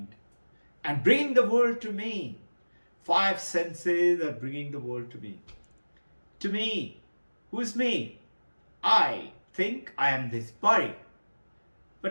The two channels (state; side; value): inverted; both; correlation -1.00